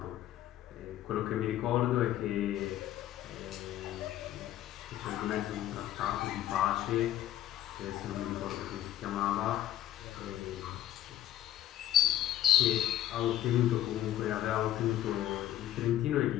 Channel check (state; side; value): quieter; right; 12.6 dB